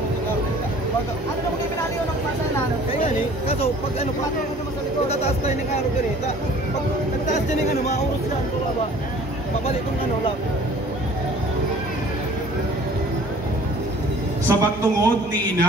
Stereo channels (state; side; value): normal; both; correlation 0.50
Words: na mga pinaliw ng pasa na? Kaya ni, kaso pag ano pa pagkataas tayo ng araw ganito. Pag nagtaas din ng ano, maurot sila ang baba. Babalik kong ano lang. Sa pagtungod ni